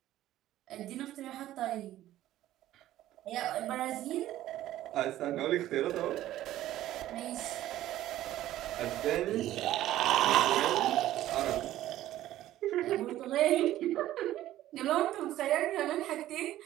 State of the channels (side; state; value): left; quieter; 13.9 dB